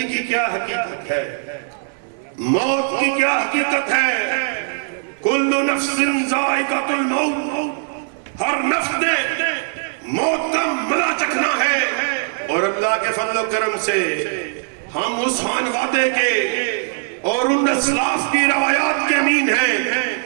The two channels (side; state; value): left; silent; digital silence